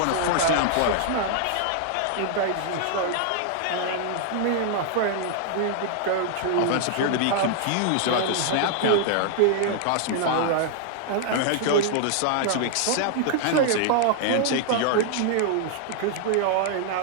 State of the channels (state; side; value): different; both; correlation 0.00